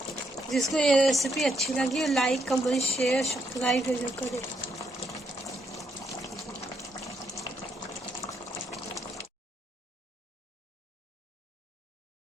जिसको ये रेसिपी अच्छी लगी लाइक कमेंट शेयर सब्सक्राइब जरूर करें।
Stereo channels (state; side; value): normal; both; correlation 0.76